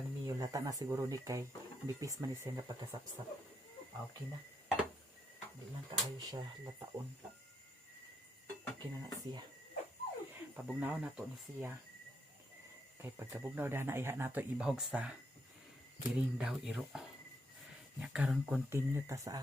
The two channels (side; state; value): both; normal; correlation 0.78